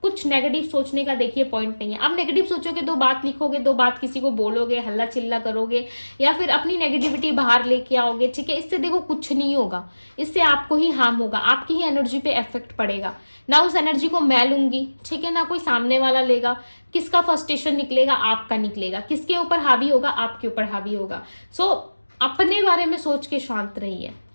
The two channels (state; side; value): inverted; both; correlation -1.00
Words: कुछ नेगेटिव सोचने का देखिए पॉइंट नहीं है। अब नेगेटिव सोचोगे, दो बात लिखोगे, दो बात किसी को बोलोगे, हल्ला चिल्ला करोगे, या फिर अपनी नेगेटिविटी बाहर लेके आओगे, ठीक है, इससे देखो कुछ नहीं होगा, इससे आपको ही हार्म होगा, आपकी ही एनर्जी पे इफेक्ट पड़ेगा। ना उस एनर्जी को मैं लूंगी, ठीक है, ना कोई सामने वाला लेगा। किसका फ्रस्ट्रेशन निकलेगा? आपका निकलेगा। किसके ऊपर हावी होगा? आपके ऊपर हावी होगा। सो अपने बारे में सोच के शांत रहिए,